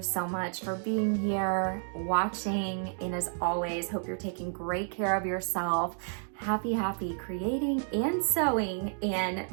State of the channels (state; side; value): silent; left; 57 dB below the other